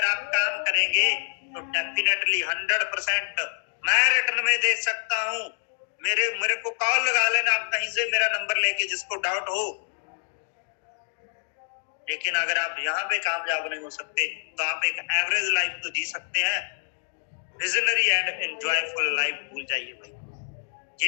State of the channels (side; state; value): right; silent; digital silence